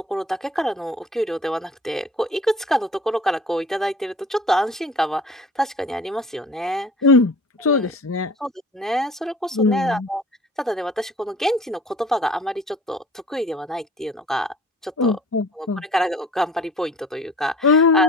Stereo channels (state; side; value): normal; both; correlation 0.47